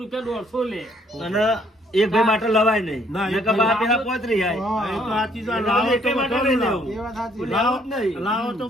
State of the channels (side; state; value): both; normal; correlation 0.65